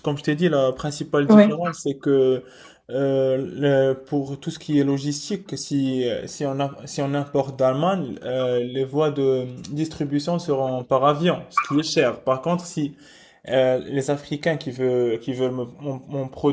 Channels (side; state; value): both; identical; correlation 1.00